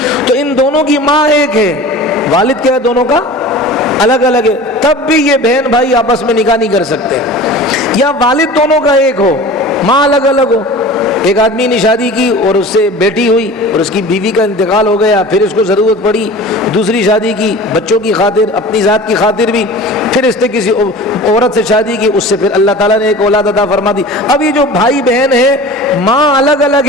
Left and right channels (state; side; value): normal; both; correlation 0.38